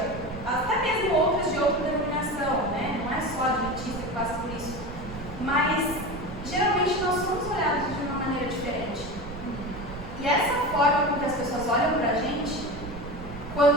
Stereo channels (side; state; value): right; noise; rumble, 12 dB below the sound